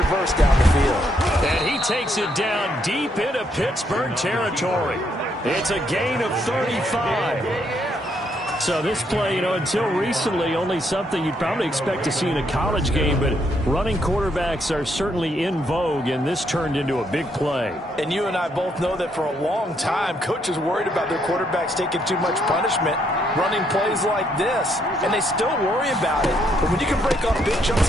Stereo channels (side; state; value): both; normal; correlation 0.73